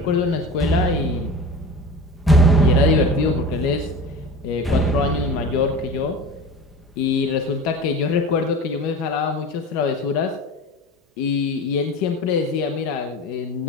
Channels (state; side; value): normal; both; correlation 0.34